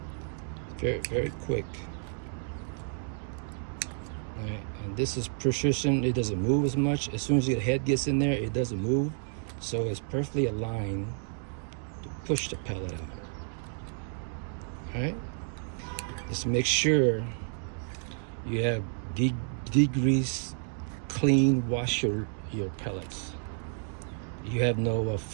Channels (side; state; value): left; silent; 57 dB below the other